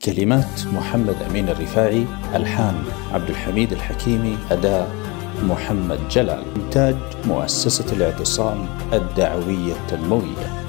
كلمات محمد أمين الرفاعي، ألحان عبد الحميد الحكيمي، أداء محمد جلال. إنتاج مؤسسة الاعتصام الدعوية التنموية.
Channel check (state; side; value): quieter; right; 26.5 dB